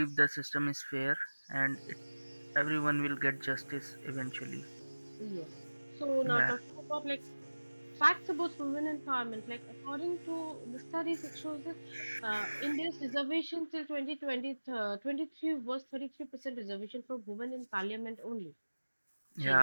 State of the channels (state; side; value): inverted; both; correlation -1.00